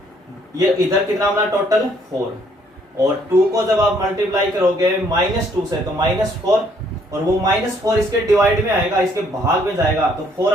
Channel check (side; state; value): both; normal; correlation 0.66